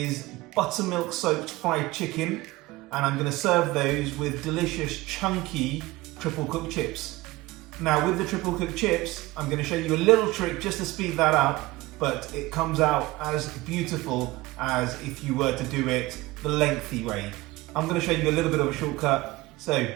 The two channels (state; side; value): quieter; left; 20.0 dB